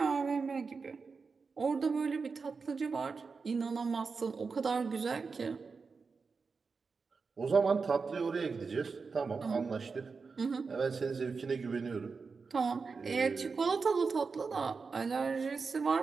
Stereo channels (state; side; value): quieter; left; 4.8 dB